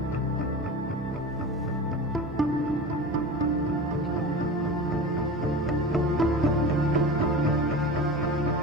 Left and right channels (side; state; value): both; normal; correlation 0.31